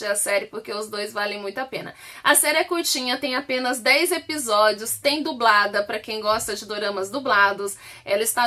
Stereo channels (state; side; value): identical; both; correlation 1.00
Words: a série, porque os dois valem muito a pena. A série é curtinha, tem apenas 10 episódios, tem dublada para quem gosta de doramas dublados. Ela